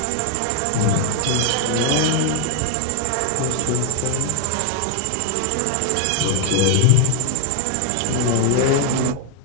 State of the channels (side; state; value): both; different; correlation 0.00